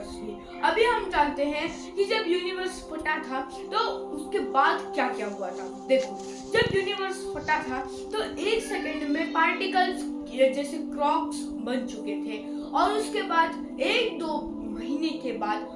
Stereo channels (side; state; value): both; identical; correlation 1.00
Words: भी। अभी हम जानते हैं कि जब यूनिवर्स फटा था तो उसके बाद क्या क्या हुआ था। देखो, जब यूनिवर्स फटा था तो एक सेकंड में पार्टिकल्स जैसे क्रॉक्स बन चुके थे, और उसके बाद 1-2 महीने के बाद